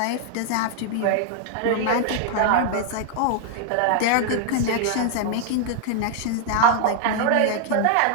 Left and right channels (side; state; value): both; different; correlation 0.00